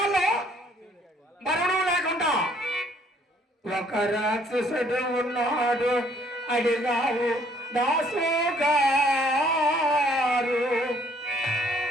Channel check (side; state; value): both; normal; correlation 0.62